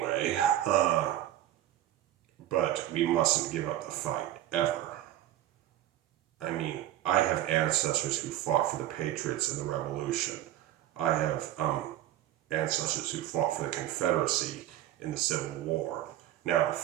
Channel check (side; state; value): left; quieter; 13.2 dB